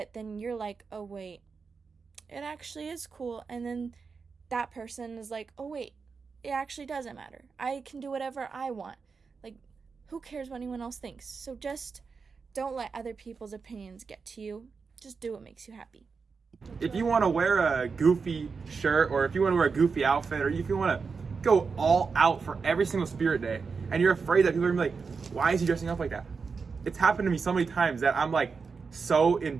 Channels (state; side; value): quieter; left; 5.1 dB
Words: then you're like, oh wait, it actually is cool. And then that person is like, oh wait, it actually doesn't matter, I can do whatever I want. Like, who cares what anyone else thinks? So just don't let other people's opinions get to you. Just do what makes you happy. If you want to wear a goofy shirt, or if you want to wear a goofy outfit, or if you want to go all out for every single spirit day, and you're afraid that people are going to be like, why is he dressing up like that? It's happened to me so many times that I'm like so